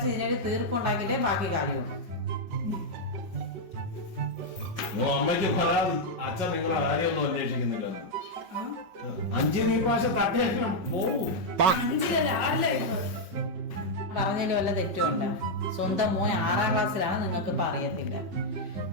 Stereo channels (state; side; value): late; left; 5.3 ms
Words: ഇതിനൊരു തീർപ്പുണ്ടാക്കിയിട്ടേ ബാക്കി കാര്യമുള്ളൂ. അമ്മയ്ക്ക് പരാതി, അച്ഛൻ നിങ്ങളെ കാര്യമൊന്നും അന്വേഷിക്കുന്നില്ലെന്ന്. 5 പ്രാവശ്യം തട്ടിയാലും പോവൂ. പറഞ്ഞതിൽ വല്ല തെറ്റുമുണ്ട്? സ്വന്തം മോൻ 6ാം ക്ലാസ്സിലാണ്, നിങ്ങൾക്ക് ഇപ്പൊ അറിയത്തില്ല.